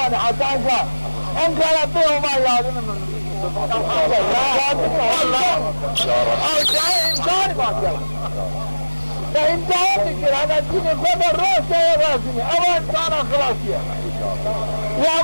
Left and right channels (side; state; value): both; inverted; correlation -1.00